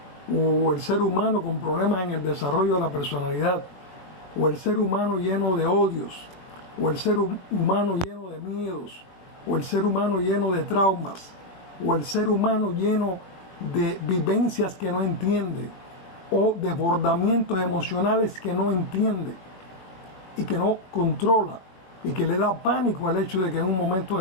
o el ser humano con problemas en el desarrollo de la personalidad, o el ser humano lleno de odios, o el ser humano lleno de miedos, o el ser humano lleno de traumas, o el ser humano lleno de vivencias que no entiende, o desbordamientos emocionales que no entiende y que no controla, y que le da pánico al hecho de que en un momento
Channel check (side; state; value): right; late; 21 ms